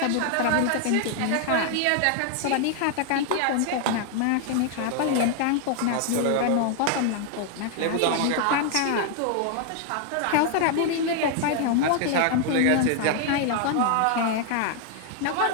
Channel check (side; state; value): both; different; correlation 0.00